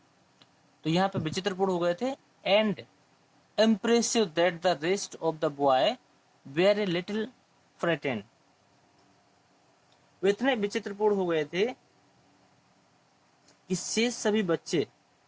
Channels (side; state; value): both; identical; correlation 1.00